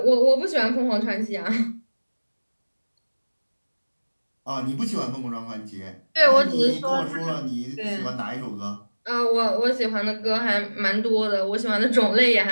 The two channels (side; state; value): both; inverted; correlation -1.00